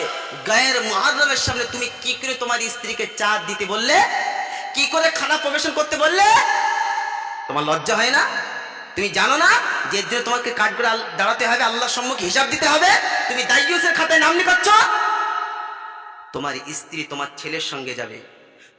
গায়ের মুহররমের সামনে তুমি কি করে তোমার স্ত্রীকে চা দিতে বললে, কি করে খানা পরিবেশন করতে বললে? তোমার লজ্জা হয় না? তুমি জানো না যে এর জন্য তোমাকে কাঠ করে দাঁড়াতে হবে, আল্লাহর সম্মুখে হিসাব দিতে হবে? তুমি দায়ুসের খাতায় নাম লিখাচ্ছ। তোমার স্ত্রী তোমার ছেলের সঙ্গে যাবে,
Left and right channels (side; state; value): both; identical; correlation 1.00